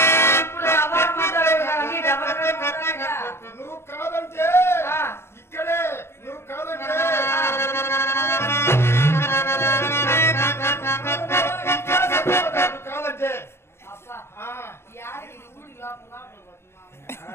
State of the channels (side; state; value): right; late; 0.12 ms